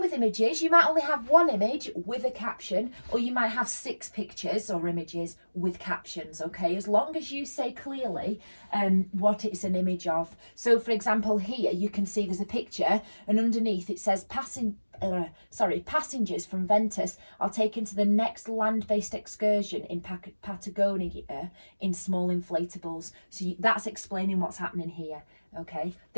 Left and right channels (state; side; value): inverted; both; correlation -1.00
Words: images. You might only have one image with a caption, or you might have 6 pictures or images with captions, okay? As long as you say clearly what it's an image of. So for example, here you can see there's a picture and underneath it says passengers from Ventus are taken to the next land-based excursion in Patagonia in small inflatables. So that's explaining what's happening here, okay?